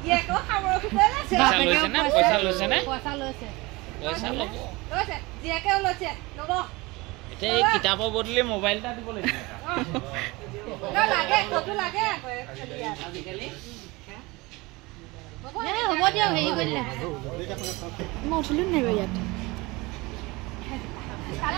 জীয়েকো খাবৰ খুঁজে লৈছে পইচা লৈছে নে পইচা লৈছে পইচা ল'ব লৈছে জীয়েকেও লৈছে ল'ব এতিয়া এই কিতাপৰ বদলি মোবাইল এটা দিব লাগিব লাগে কতো লাগে আজিকালি হ'ব দিয়ক হেৰি কৰিলে মই উঠিলো নাই বাৰু ইয়াত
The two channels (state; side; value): quieter; left; 23.2 dB